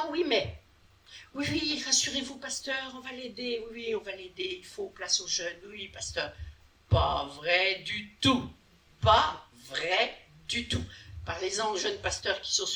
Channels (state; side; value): identical; both; correlation 1.00